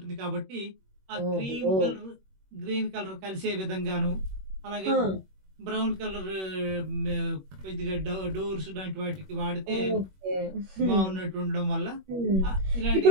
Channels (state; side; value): late; left; 21 ms